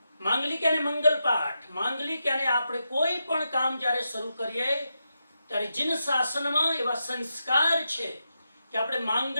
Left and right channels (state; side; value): inverted; both; correlation -0.86